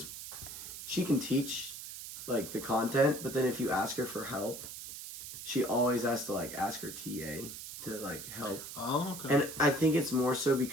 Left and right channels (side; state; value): right; noise; hiss, 10 dB below the sound